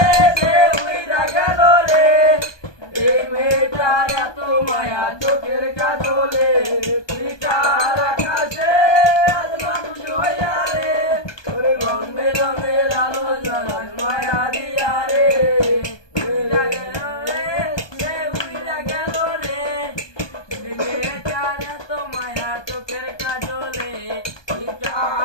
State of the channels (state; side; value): late; right; 1.2 ms